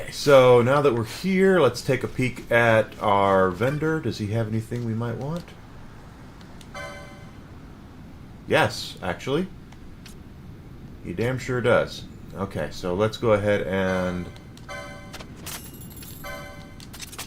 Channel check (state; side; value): identical; both; correlation 1.00